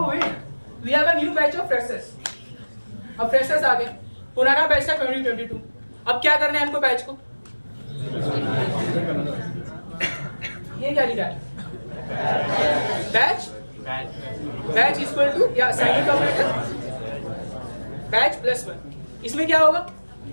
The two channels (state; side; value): inverted; both; correlation -1.00